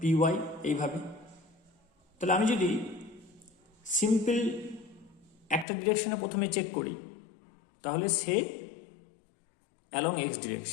ওয়াই, এইভাবে। তাহলে আমি যদি সিম্পল একটা ডিরেকশনে প্রথমে চেক করি, তাহলে সে অ্যালং এক্স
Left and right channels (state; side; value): drops out; right; at 5.7 s